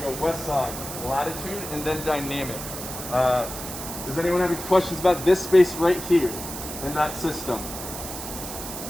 go west side, latitude, and then dynamic. Does anyone have any questions about this space right here in that system?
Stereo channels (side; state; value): right; noise; hiss, 8 dB below the sound